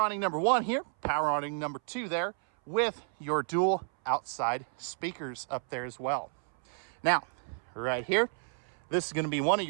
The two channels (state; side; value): silent; left; 57 dB below the other